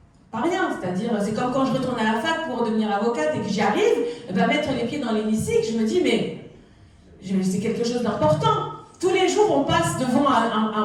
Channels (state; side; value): identical; both; correlation 1.00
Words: Pas rien. C'est-à-dire, c'est comme quand je retourne à la fac pour devenir avocate et que j'y arrive, mettre les pieds dans l'hémicycle, je me dis, mais c'est quelque chose d'important. Tous les jours, on passe devant